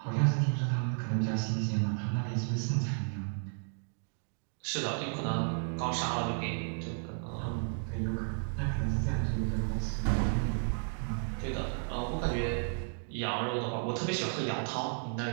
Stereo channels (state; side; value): silent; left; 56 dB below the other